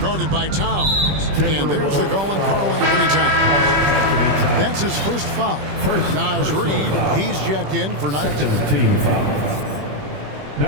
by Towns. And there's the goal on Karl Anthony Towns. That's his first foul. Naz Reid, he's checked in for 19. Team foul.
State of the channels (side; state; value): left; late; 21 ms